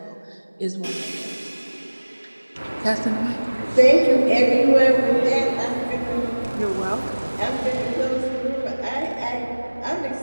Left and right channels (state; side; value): inverted; both; correlation -1.00